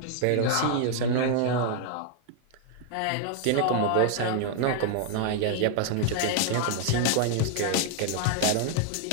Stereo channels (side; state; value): both; different; correlation 0.00